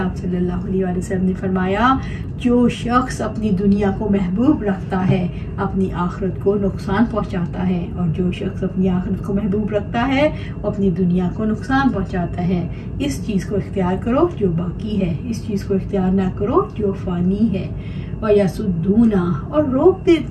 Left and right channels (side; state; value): both; identical; correlation 1.00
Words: सल्लल्लाहु अलैहि वसल्लम ने फरमाया, जो शख्स अपनी दुनिया को महबूब रखता है अपनी आखिरत को नुकसान पहुंचाता है, और जो शख्स अपनी आखिरत को महबूब रखता है वो अपनी दुनिया को नुकसान पहुंचाता है। इस चीज़ को इख्तियार करो जो बाकी है, इस चीज़ को इख्तियार ना करो जो फ़ानी है। वयसुद्दूना, और रोक